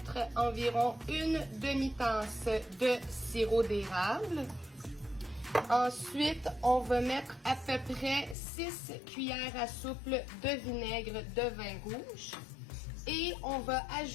environ une demi-tasse de sirop d'érable. Ensuite, on va mettre à peu près 6 cuillères à soupe de vinaigre de vin rouge. Et on va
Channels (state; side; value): drops out; right; at 8.3 s